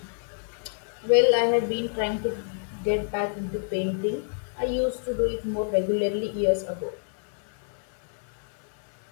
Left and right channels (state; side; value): silent; right; 59 dB below the other